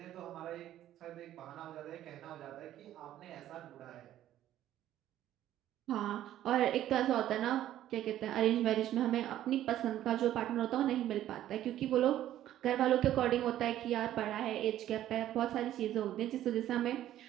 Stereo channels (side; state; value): left; quieter; 12.6 dB